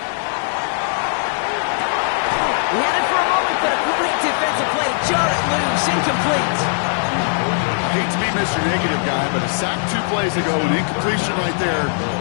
He had it for a moment, but a great defensive play. Jar it loose, incomplete. Hate to be Mr. Negative guy, but a sack 2 plays ago, an incompletion right there.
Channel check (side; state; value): right; silent; 66 dB below the other